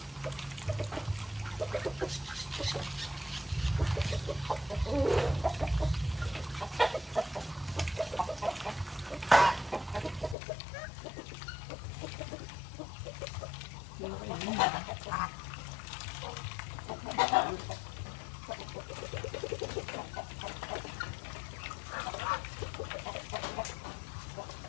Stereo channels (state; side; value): drops out; right; at 10.4 s